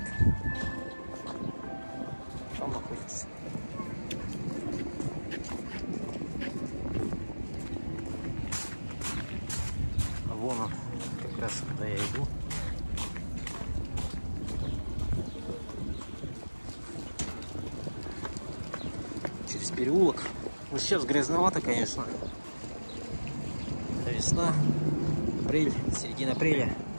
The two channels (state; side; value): inverted; both; correlation -1.00